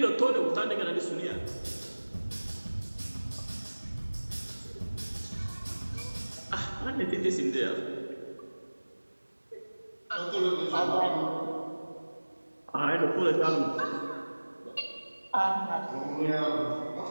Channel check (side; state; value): both; inverted; correlation -1.00